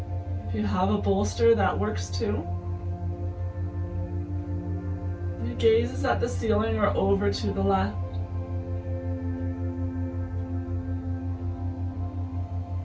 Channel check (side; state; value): both; identical; correlation 1.00